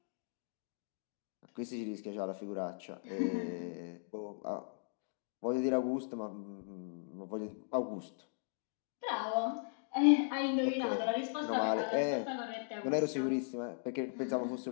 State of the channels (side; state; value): right; silent; digital silence